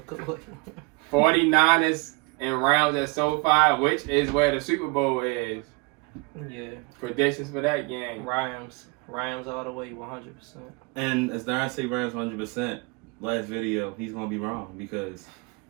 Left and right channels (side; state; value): left; quieter; 27.6 dB